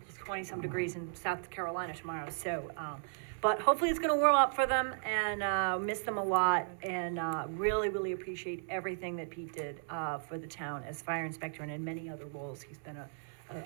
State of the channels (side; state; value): left; silent; digital silence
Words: 20-some degrees in South Carolina tomorrow, so, but hopefully it's gonna warm up for them and, miss them a lot and, really, really appreciate everything that Pete did, for the town as fire inspector and in many other roles. He's been